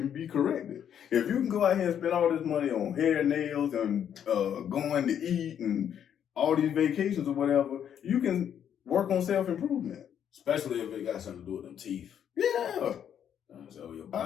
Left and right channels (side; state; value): right; quieter; 9.1 dB